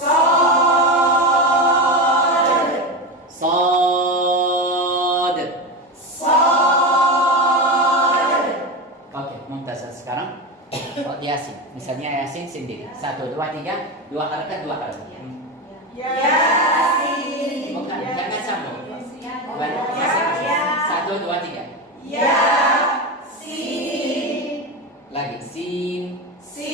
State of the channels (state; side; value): normal; both; correlation 0.19